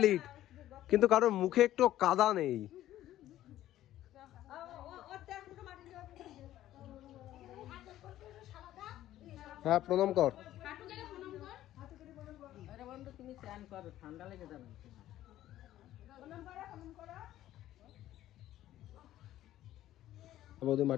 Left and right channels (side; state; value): right; quieter; 13.5 dB